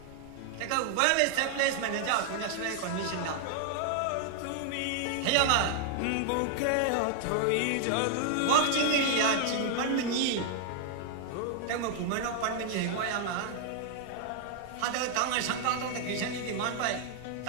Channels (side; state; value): both; different; correlation 0.00